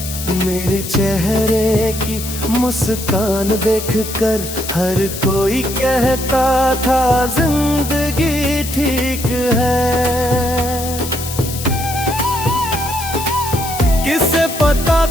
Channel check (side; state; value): left; noise; hiss, 8 dB below the sound